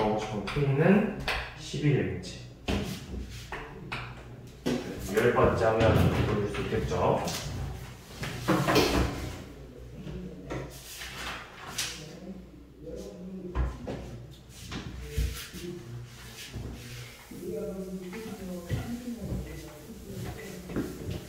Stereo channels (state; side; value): identical; both; correlation 1.00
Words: 싶은 K는 10이 되겠지. 10번째 하면 보여줄 수 있겠죠.